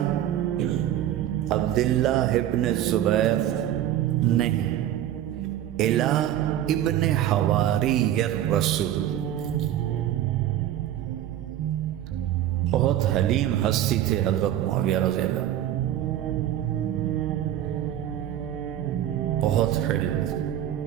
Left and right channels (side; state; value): left; quieter; 11.9 dB